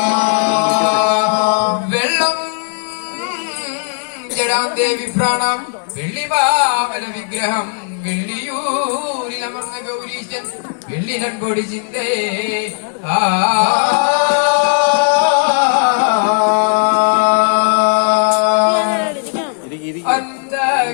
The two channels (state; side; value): silent; right; 67 dB below the other